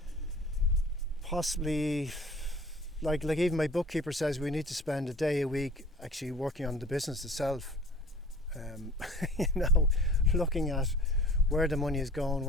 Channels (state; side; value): normal; both; correlation 0.46